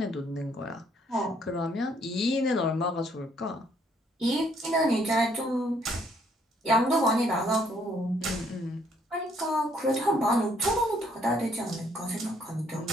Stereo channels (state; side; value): normal; both; correlation 0.67